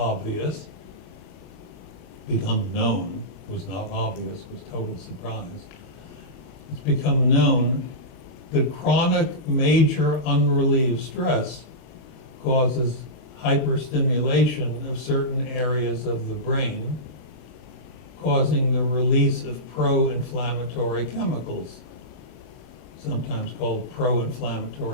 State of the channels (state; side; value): late; right; 40 ms